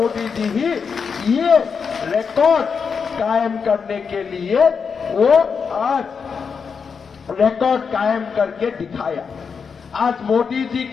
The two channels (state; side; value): quieter; right; 5.9 dB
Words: जी ही ये रिकॉर्ड कायम करने के लिए वो आज रिकॉर्ड कायम करके दिखाया। आज मोदी जी